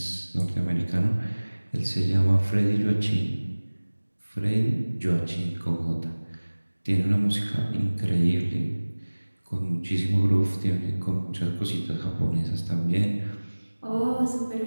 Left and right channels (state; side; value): inverted; both; correlation -1.00